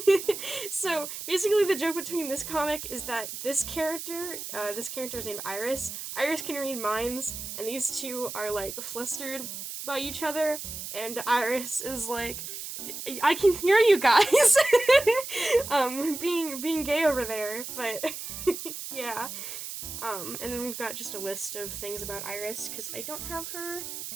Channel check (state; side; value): noise; right; hiss, 8 dB below the sound